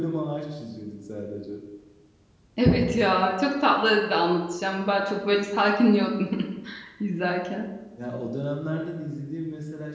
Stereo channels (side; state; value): both; identical; correlation 1.00